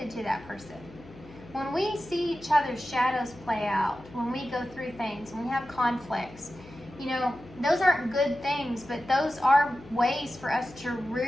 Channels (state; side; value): noise; left; hum, 20 dB below the sound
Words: to that person. When we see each other's shadows play out, when we go through things, when we have conflicts, those aren't good things, but those are ways for us to